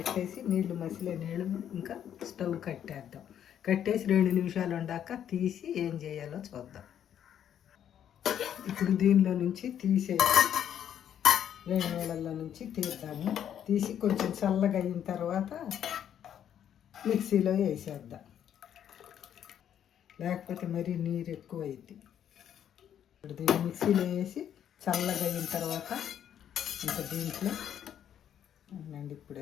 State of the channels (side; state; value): right; quieter; 9.7 dB